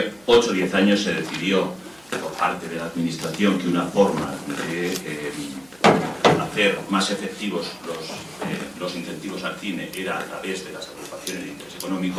8 o 10 años se decidió por parte de la Administración que una forma de hacer más efectivos los incentivos al cine era a través de las agrupaciones de interés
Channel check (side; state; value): right; noise; hum, 30 dB below the sound